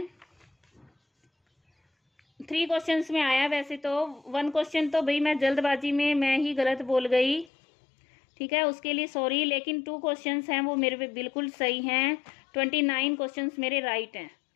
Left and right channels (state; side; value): drops out; right; at 7.5 s